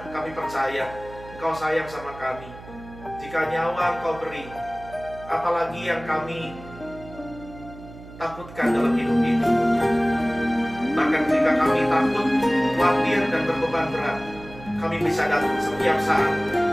kami percaya Engkau sayang sama kami. Jika nyawa Engkau beri, apalagi yang kami takutkan dalam hidup ini. Bahkan jika kami takut, khawatir, dan berbeban berat, kami bisa datang setiap saat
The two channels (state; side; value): noise; right; hum, 17 dB below the sound